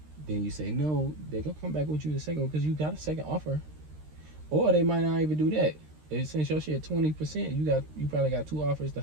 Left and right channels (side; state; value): left; late; 13 ms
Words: then you say no, they're gonna come back with you the second one because you got a second offer. Or they might not even do that. Since your shit 20%, you probably got two offers. The